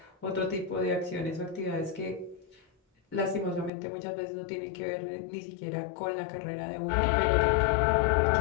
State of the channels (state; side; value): drops out; right; at 3.7 s